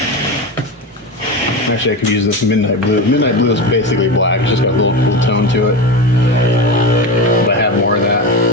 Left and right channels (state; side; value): normal; both; correlation 0.22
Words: Actually, I could use this midnight blue. Midnight blue is basically black. It's just got a little cool tone to it. But I have more of that.